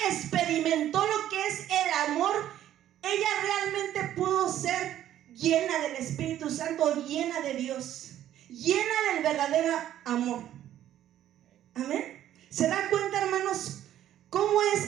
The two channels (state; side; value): quieter; left; 11.9 dB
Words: experimentó lo que es el amor, ella realmente pudo ser llena del Espíritu Santo, llena de Dios, llena del verdadero amor. Amén. ¿Se dan cuenta, hermanos, cómo